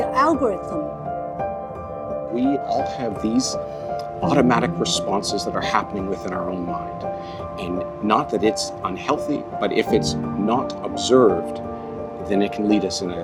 algorithm. We all have these automatic responses that are happening within our own mind. And not that it's unhealthy, but if it's not observed, then it can lead us in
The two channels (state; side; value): identical; both; correlation 1.00